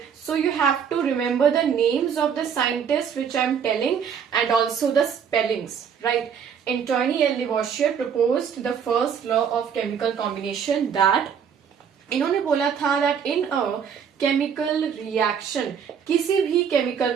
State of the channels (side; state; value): left; quieter; 7.5 dB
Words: So you have to remember the names of the scientists which I am telling and also the spellings. Right. Antoine L. Lavoisier proposed the first law of chemical combination that इन्होंने बोला था that in a chemical reaction, किसी भी chemical